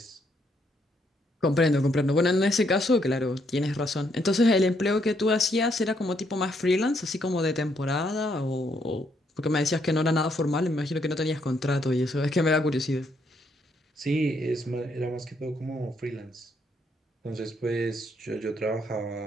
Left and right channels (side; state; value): both; normal; correlation 0.73